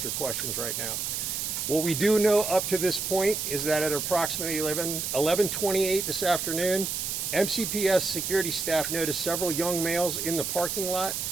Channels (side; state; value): right; noise; hiss, 2 dB below the sound